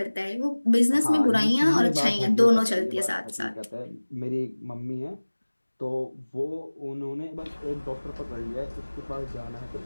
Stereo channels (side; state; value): both; inverted; correlation -1.00